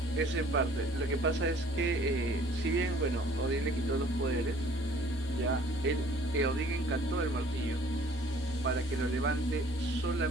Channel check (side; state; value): both; normal; correlation 0.55